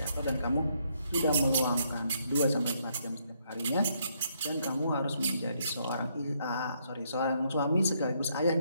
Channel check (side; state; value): both; inverted; correlation -0.73